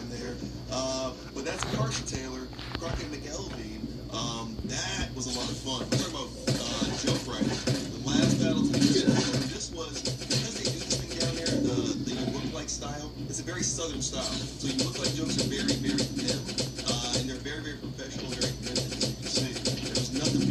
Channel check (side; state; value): both; identical; correlation 1.00